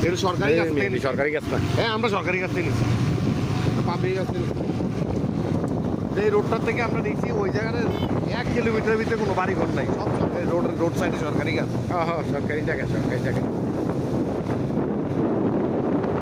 এটা সরকারি কাছ থেকে নিছি। সরকারি কাজ না। হ্যাঁ আমরা সরকারি কাছ থেকে নিচ্ছি পাবলিক কাছ থেকে নিচ্ছি। এই রোডটার থেকে আমরা নিচ্ছি ওই জায়গায় 1 কিলোমিটারের ভিতরে কোনো বাড়ি ঘর নাই সব সরকারি রোড সাইডে সরকারি গাছ। হ্যাঁ সরকারি জায়গা সরকারি জায়গা।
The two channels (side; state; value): both; identical; correlation 1.00